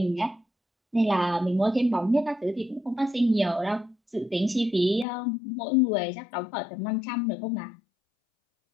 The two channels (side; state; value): right; drops out; at 5.1 s